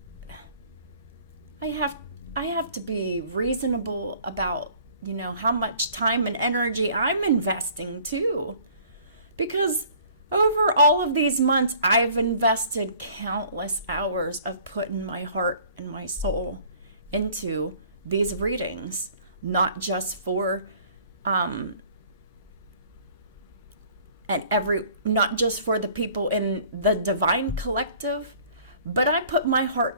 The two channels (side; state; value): both; inverted; correlation -0.53